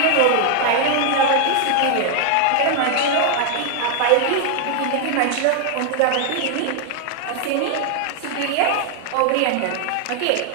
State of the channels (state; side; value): different; both; correlation 0.00